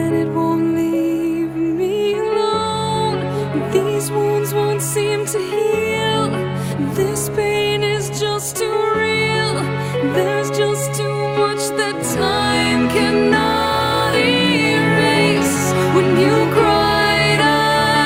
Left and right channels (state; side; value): identical; both; correlation 1.00